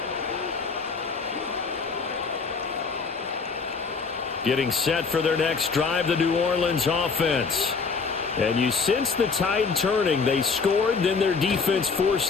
Getting set for their next drive, the New Orleans offense. And you sense the tide turning. They scored, then their defense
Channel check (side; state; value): right; quieter; 4.9 dB